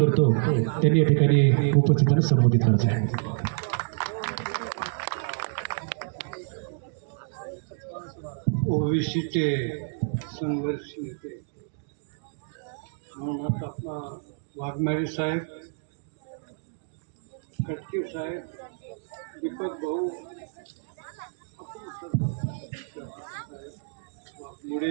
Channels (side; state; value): left; silent; digital silence